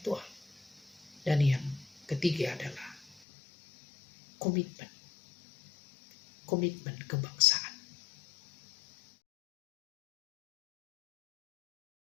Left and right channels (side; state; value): right; drops out; at 3.2 s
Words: dan yang ketiga adalah komitmen kebangsaan.